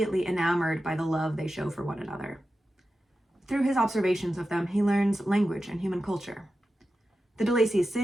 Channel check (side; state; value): both; normal; correlation 0.92